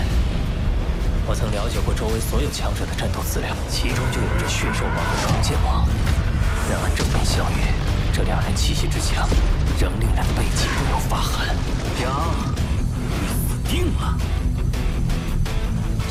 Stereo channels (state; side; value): identical; both; correlation 1.00